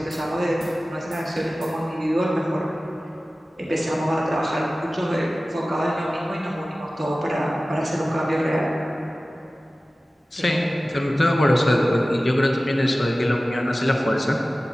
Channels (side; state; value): both; normal; correlation 0.96